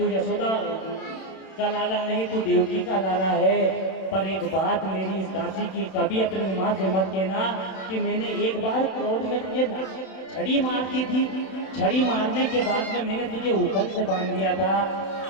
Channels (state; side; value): late; right; 31 ms